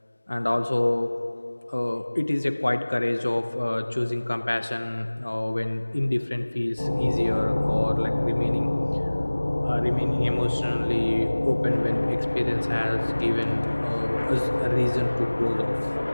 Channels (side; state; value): both; inverted; correlation -1.00